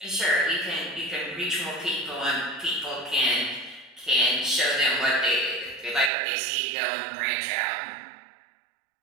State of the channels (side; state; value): left; drops out; at 6.1 s